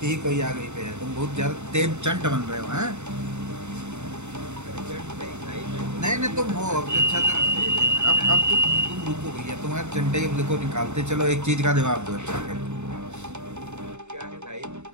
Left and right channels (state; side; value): late; left; 0.83 ms